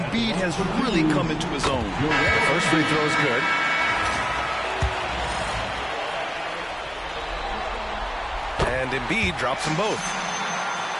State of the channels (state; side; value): identical; both; correlation 1.00